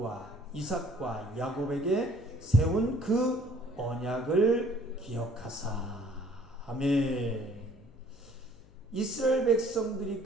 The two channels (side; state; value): left; noise; hum, 25 dB below the sound